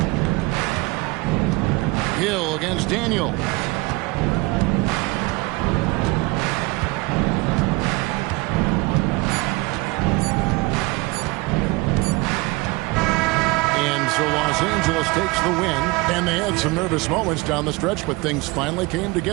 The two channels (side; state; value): left; quieter; 23.5 dB